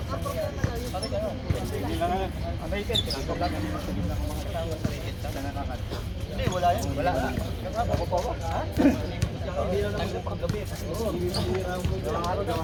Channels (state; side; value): identical; both; correlation 1.00